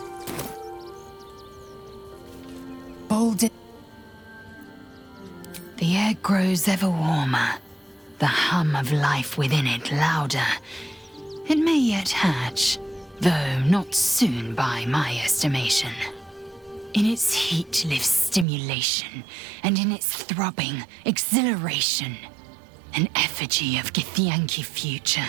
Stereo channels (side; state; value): left; drops out; at 18.4 s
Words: golden... The air grows ever warmer, the hum of life within it louder. It may yet hatch, though not soon by my estimation. In its heat lives stimulation, and in its throbbing, exhilaration. An effigy of Githyanki future,